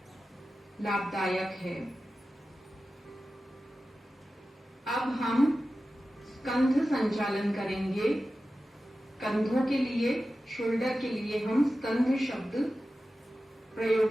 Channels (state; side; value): normal; both; correlation 0.94